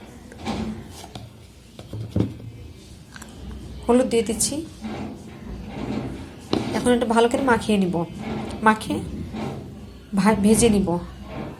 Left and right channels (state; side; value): identical; both; correlation 1.00